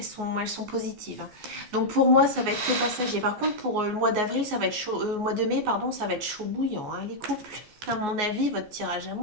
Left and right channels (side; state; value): left; late; 14 ms